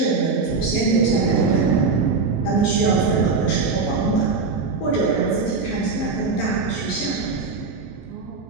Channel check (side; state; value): left; quieter; 4.4 dB